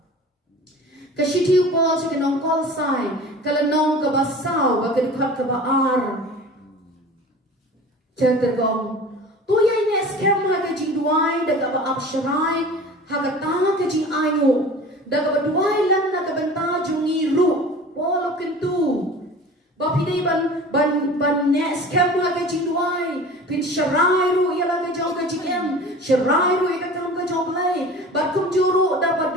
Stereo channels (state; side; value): normal; both; correlation 0.40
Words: Ka shiti upol se ki nong kolasai, kala nong ka basaw ba ka dikhat ka ba ar. Tergong, tu yang ni scam haga jing duai, daga ba absharai, haga tanga ke jing ayu, daga ba duai lan naga benta jungi ru, wala kentu. Ba pidai ban ne scam haga jing duai, pin sharai ru ialah ke jong ke jing em, sharai ru ia kam ke jong play, ba kum juru daga